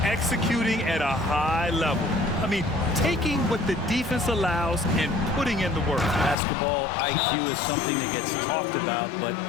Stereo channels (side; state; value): right; drops out; at 6.4 s